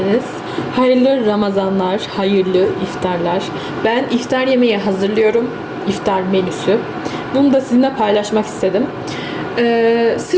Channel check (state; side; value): identical; both; correlation 1.00